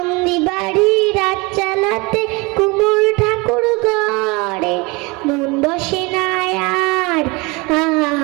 বাড়ি রাত চালাতে কুমোর ঠাকুর ঘরে। মন বসে না আর,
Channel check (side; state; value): left; quieter; 26.2 dB